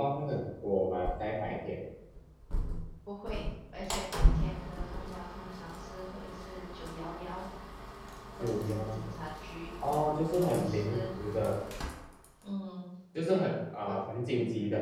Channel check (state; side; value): identical; both; correlation 1.00